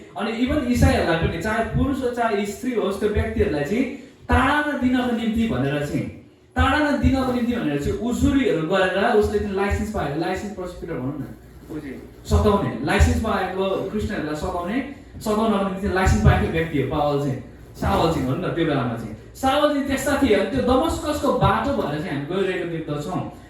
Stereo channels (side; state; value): both; identical; correlation 1.00